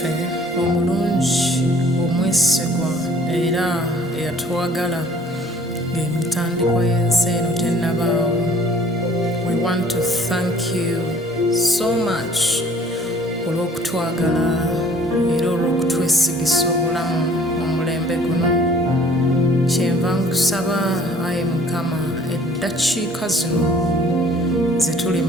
omulungi omwesigwa era eyatwagala ng'emitandikwa y'ensi eno tennabaawo. We want to thank you so much olw'okutwagala era olw'okutwesigisa obulamu mu mulembe guno. Kyenva nkusaba Ayi Mukama, eddakiika zino ze tuli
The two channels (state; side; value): normal; both; correlation 0.54